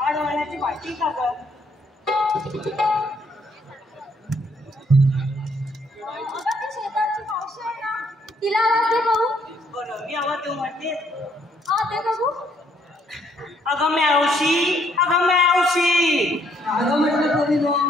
आड वाहण्याची माहिती का ग? शेताची मावशी आहे ना, तिला आवाज दे बघू. बरं, मी आवाज देऊ म्हणते. हा दे बघू. अगं मावशी, अगं मावशी. अगं म्हटलं कोणी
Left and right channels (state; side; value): normal; both; correlation 0.68